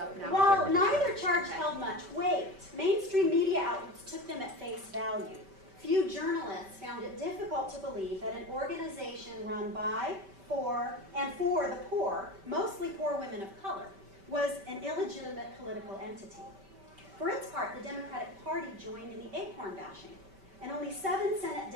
now. While neither charge held much weight, mainstream media outlets took them at face value. Few journalists found it difficult to believe that an organization run by, for the poor, mostly poor women of color, was an illegitimate political entity. For its part, the Democratic Party joined in the ACORN bashing, and only 7 Senate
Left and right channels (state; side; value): late; left; 5.2 ms